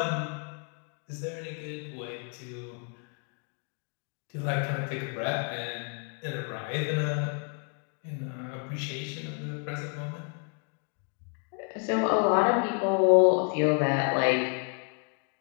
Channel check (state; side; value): quieter; right; 37.6 dB